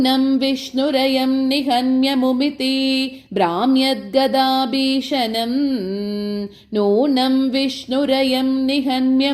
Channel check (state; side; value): identical; both; correlation 1.00